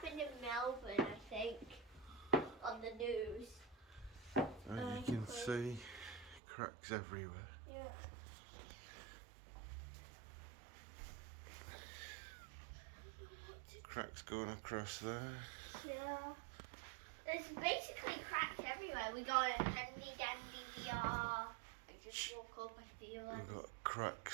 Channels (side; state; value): left; drops out; at 6.4 s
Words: in Melbourne, I think, on the news. You can see cracks everywhere. Yeah. Cracks going across there. Yeah. There's basically cracks everywhere. We got a handy dandy VR. I just woke up, I feel like. We've got